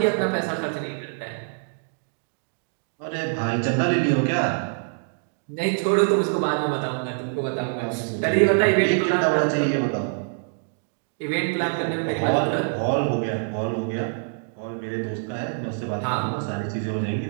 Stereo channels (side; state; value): left; silent; digital silence